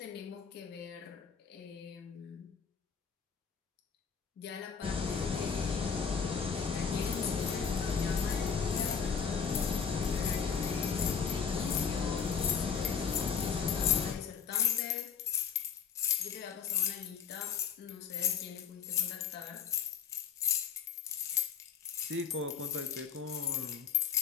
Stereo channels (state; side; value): quieter; right; 6.7 dB